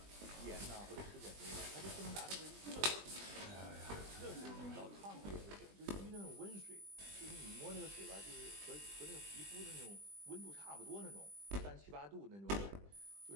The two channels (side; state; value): left; late; 20 ms